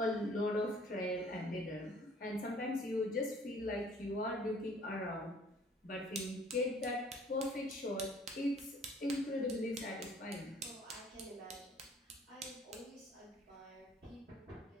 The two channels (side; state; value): both; normal; correlation 0.55